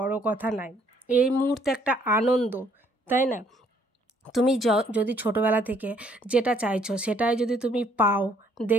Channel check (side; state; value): both; normal; correlation 0.65